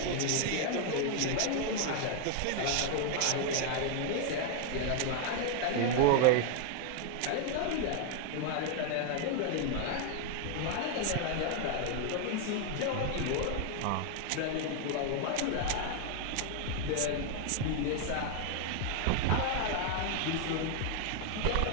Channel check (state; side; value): different; both; correlation 0.00